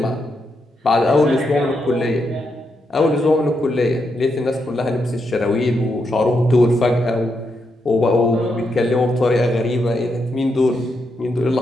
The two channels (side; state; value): both; normal; correlation 0.82